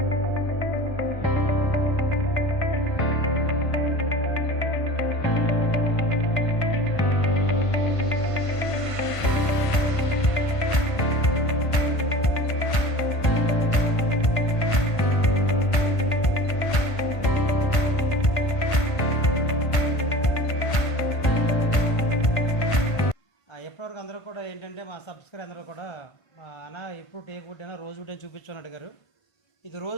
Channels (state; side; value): late; right; 1.5 ms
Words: ఎప్పటివరకు అందరూ కూడా ఏంటంటే మా సబ్స్క్రైబర్ అందరూ కూడా అన్న ఇప్పుడు టేక్ వుడ్ అయినా రోజ్ వుడ్ అని చూపించుని అడిగారు. ఇది